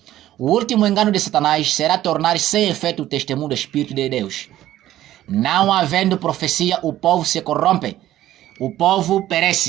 o último engano de Satanás será tornar sem efeito o testemunho do Espírito de Deus. Não havendo profecia, o povo se corrompe, o povo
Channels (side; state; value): left; quieter; 13.6 dB